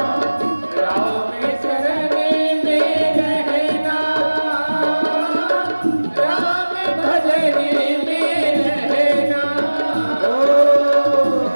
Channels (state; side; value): inverted; both; correlation -1.00